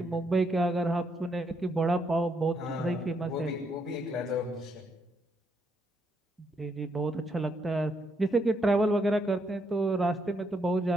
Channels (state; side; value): normal; both; correlation 0.76